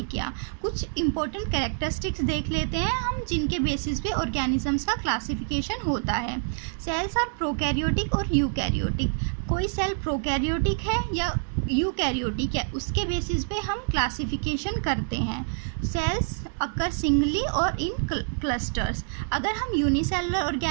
किया। कुछ इंपॉर्टेंट कैरेक्टरिस्टिक्स देख लेते हैं हम जिनके बेसिस पे ऑर्गेनिजम्स का क्लासिफिकेशन होता है। सेल्स आर प्रोकैरियोटिक और यूकैरियोटिक। कोई सेल प्रोकैरियोटिक है या यूकैरियोटिक है, उसके बेसिस पे हम क्लासिफिकेशन करते हैं। सेल्स अकर सिंगली और इन क्लस्टर्स। अगर हम यूनिसेलुलर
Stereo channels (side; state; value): left; silent; digital silence